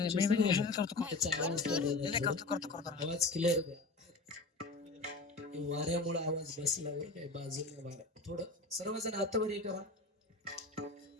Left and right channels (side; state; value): right; quieter; 3.3 dB